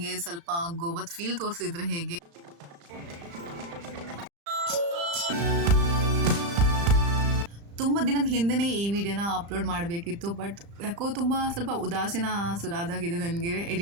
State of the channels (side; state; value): left; late; 35 ms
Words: ಸ್ವಲ್ಪ ಗೋವಾದ ಫೀಲ್ ತೋರಿಸಿದ್ರೆ ಹೇಗೆ. ತುಂಬ ದಿನದ ಹಿಂದೆನೇ ಈ ವಿಡಿಯೋನ ಅಪ್ಲೋಡ್ ಮಾಡಬೇಕಿತ್ತು, ಬಟ್ ಯಾಕೋ ತುಂಬ ಸ್ವಲ್ಪ ಉದಾಸೀನ ಸುರಾದಾಗಿದೆ ನನಗೆ